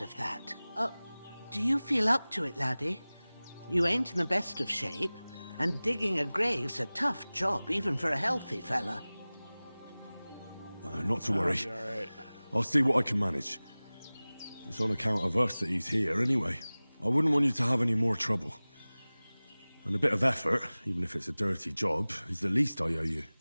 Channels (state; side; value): inverted; both; correlation -0.99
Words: of that. Do you feel up to it, laddie? You ain't in the best of shape, and digging a grave's a tough job, even for a healthy fella. Not to worry. All right. I'll see what I can manage. It's on account of us that he's here, anyway. I wouldn't want you to have any more trouble. And a bit of effort, even if it's a dirty job, is the least I owe you.